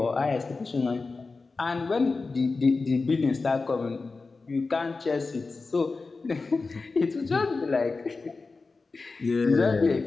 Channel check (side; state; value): right; quieter; 3.9 dB